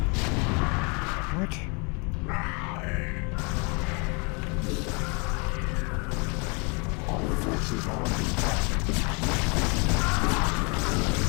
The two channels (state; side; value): quieter; right; 32.8 dB